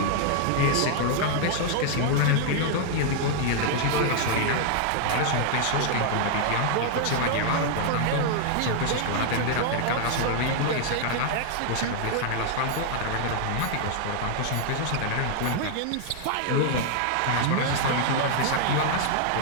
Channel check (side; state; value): both; different; correlation 0.00